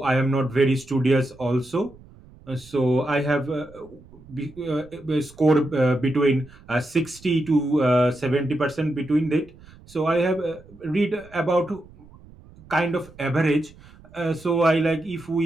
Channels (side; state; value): right; noise; rumble, 23 dB below the sound